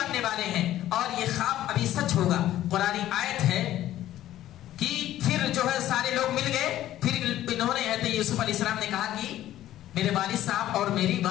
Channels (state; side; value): quieter; right; 13.4 dB